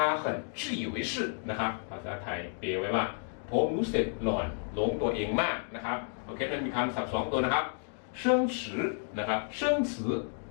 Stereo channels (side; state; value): right; silent; 57 dB below the other